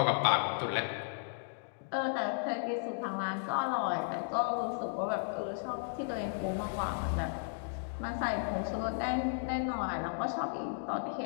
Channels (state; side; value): silent; right; digital silence